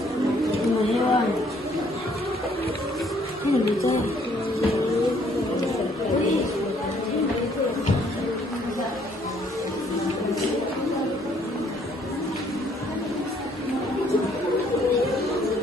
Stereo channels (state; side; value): normal; both; correlation 0.64